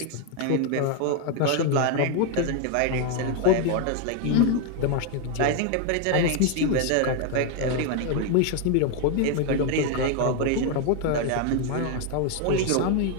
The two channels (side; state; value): both; different; correlation 0.01